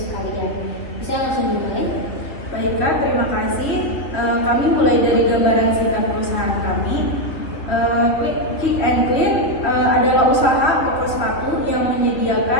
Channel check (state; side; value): late; right; 3.4 ms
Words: kalian. Bisa langsung dimulai? Baik Kak, terima kasih. Kami mulai dari gambaran singkat perusahaan kami. Pick and Clean adalah usaha toko sepatu yang